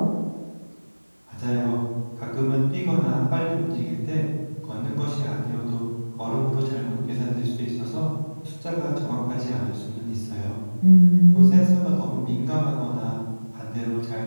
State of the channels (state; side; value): inverted; both; correlation -1.00